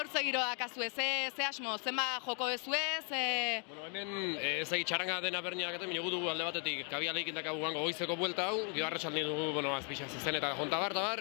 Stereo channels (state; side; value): quieter; right; 39.7 dB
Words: zegiro dakazue, ze asmo, zenba joko bezuez? Hemen, ez txaranga dena berniak eta minugutu alde batetik Kabialaikin dakagu gango goizeko buelta hau, gio arratsaldi dugu, azpixa zezen eta jontabar,